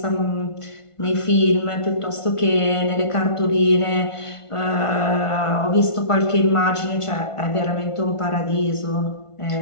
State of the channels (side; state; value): right; late; 1.5 ms